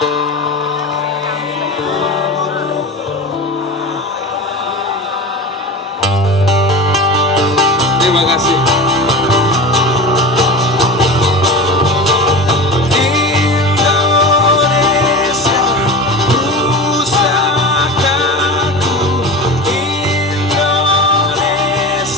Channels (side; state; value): both; normal; correlation 0.30